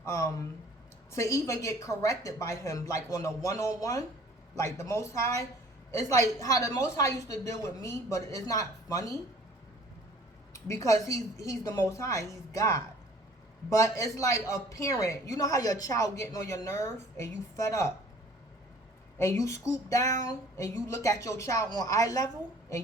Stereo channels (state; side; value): normal; both; correlation 0.52